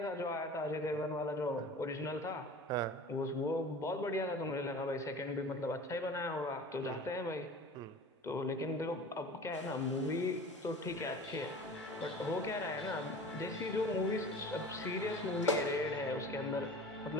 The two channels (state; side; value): normal; both; correlation 0.39